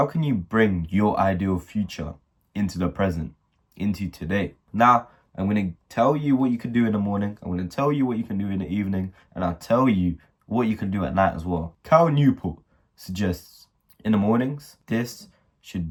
can you bring your ideal future into the present, into today? Now, I'm going to tell you what you can do in the morning. I'm going to tell you what you can do in the evening. And I'll tell you what you can do at night as well. 𝐾𝐨 suggests in the mornings, this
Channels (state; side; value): identical; both; correlation 1.00